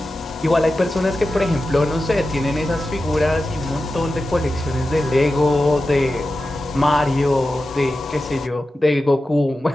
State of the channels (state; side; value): normal; both; correlation 0.92